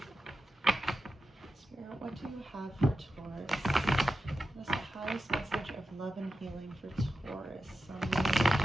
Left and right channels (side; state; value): both; normal; correlation 0.91